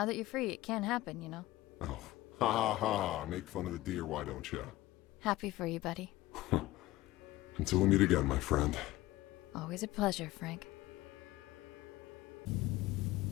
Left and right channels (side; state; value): right; quieter; 17.3 dB